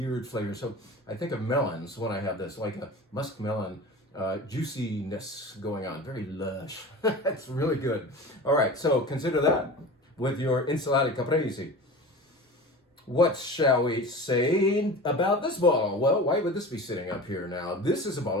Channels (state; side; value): normal; both; correlation 0.35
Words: flavors. So I think of melons when I have this, like a musk melon juiciness going on. Very lush. That's really good. All right, so consider that with your Insalata Caprese. What shall we say about this bottle? Well, why would this be sitting up here now? This is a